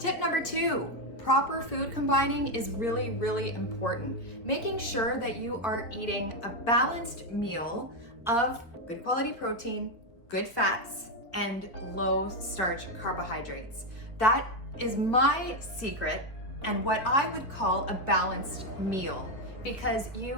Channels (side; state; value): right; late; 4.5 ms